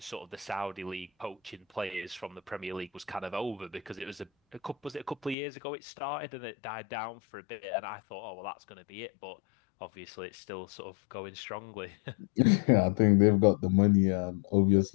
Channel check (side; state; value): right; drops out; at 5.4 s